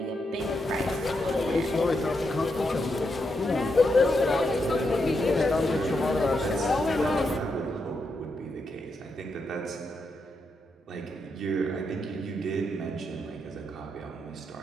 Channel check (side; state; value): both; normal; correlation 0.83